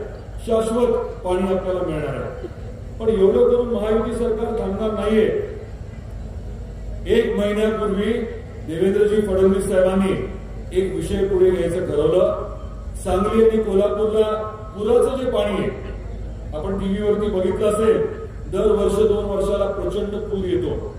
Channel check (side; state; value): both; identical; correlation 1.00